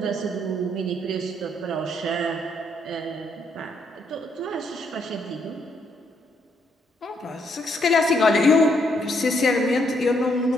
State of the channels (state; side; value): normal; both; correlation 0.73